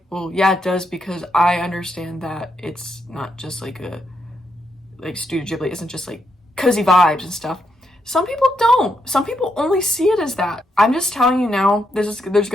well, yeah, it does, because I understand that it's not just like Studio Ghibli isn't just like cozy vibes and stuff. Some people don't. Some people only see it as that. I'm just telling you now, there's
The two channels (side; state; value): both; normal; correlation 0.80